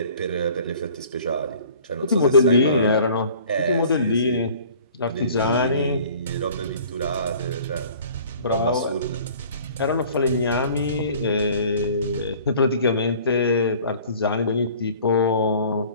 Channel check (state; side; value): inverted; both; correlation -0.50